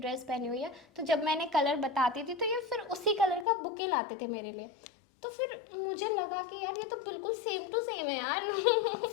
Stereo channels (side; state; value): right; drops out; at 3.5 s